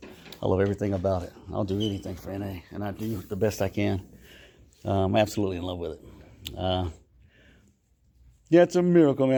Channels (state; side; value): identical; both; correlation 1.00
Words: I love everything about it. I'll do anything for NA, and I do the best I can. I'm absolutely in love with it. It's a miracle,